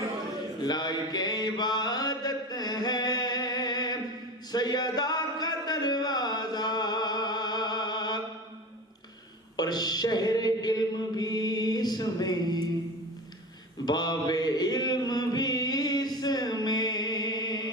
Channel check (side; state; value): both; normal; correlation 0.30